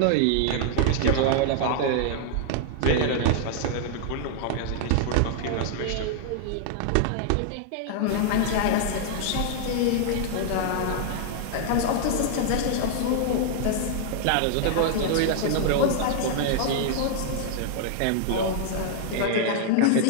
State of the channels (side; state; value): both; different; correlation 0.00